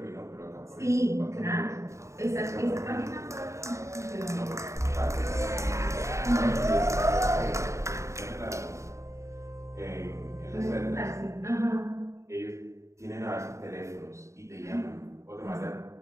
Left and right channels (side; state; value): left; late; 0.14 ms